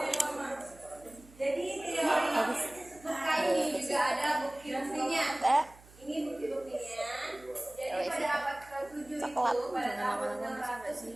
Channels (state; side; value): noise; right; hum, 23 dB below the sound